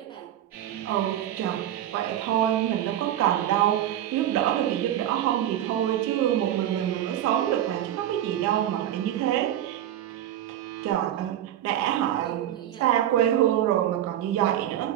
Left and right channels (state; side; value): quieter; left; 11.8 dB